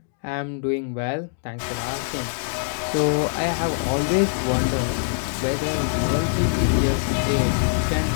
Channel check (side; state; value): right; silent; digital silence